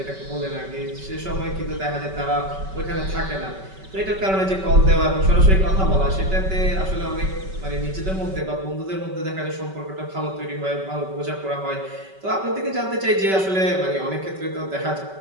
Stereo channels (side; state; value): left; late; 5.2 ms